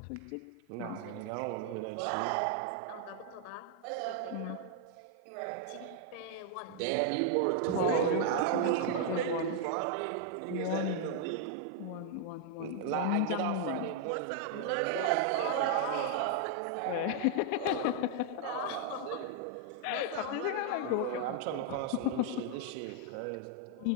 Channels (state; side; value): different; both; correlation 0.00